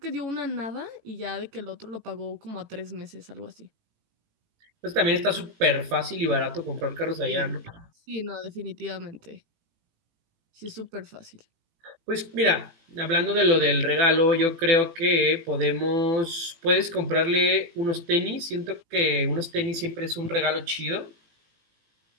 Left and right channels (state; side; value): late; left; 18 ms